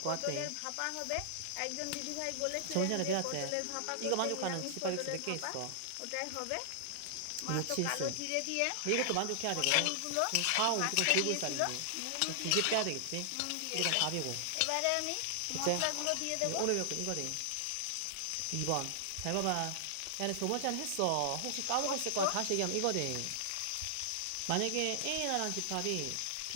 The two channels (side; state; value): both; different; correlation 0.00